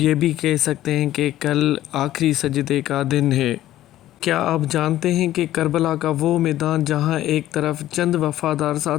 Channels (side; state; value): right; quieter; 13.8 dB